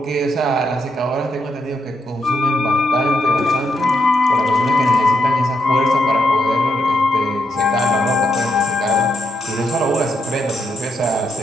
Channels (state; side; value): normal; both; correlation 0.79